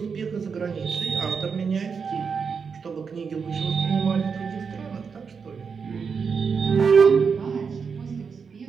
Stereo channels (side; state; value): left; quieter; 5.8 dB